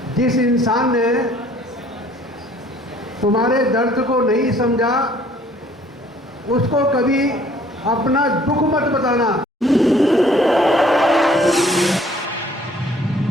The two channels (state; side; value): normal; both; correlation 0.58